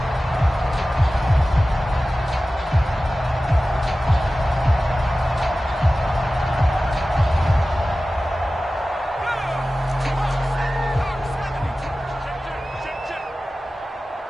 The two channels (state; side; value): normal; both; correlation 0.96